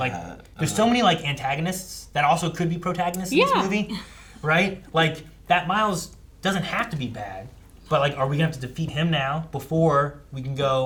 there's so many like antagonists that also could be protagonists in Yeah. this movie, right? Like that Miles doesn't have to be bad, but like, are we gonna have to defeat him now before we can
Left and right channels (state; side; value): identical; both; correlation 1.00